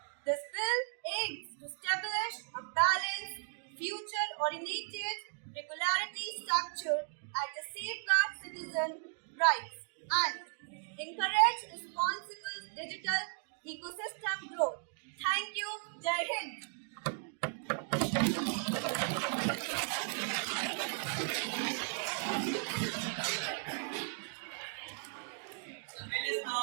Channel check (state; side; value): silent; left; 54 dB below the other